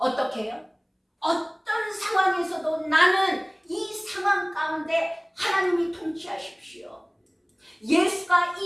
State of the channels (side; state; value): both; identical; correlation 1.00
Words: 해요? 어떤 상황에서도 나는 이 상황 가운데 하나님이 통치하십시오. 예수가